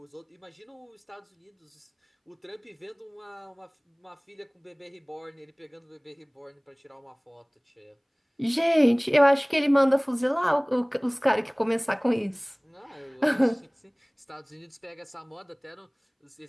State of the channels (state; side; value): identical; both; correlation 1.00